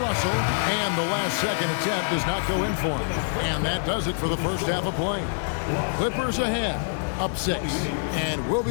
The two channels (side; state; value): right; silent; 56 dB below the other